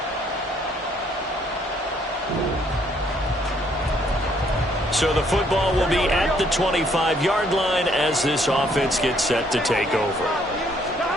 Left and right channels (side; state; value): both; normal; correlation 0.66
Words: So the football will be at the 25-yard line as this offense gets set to take over.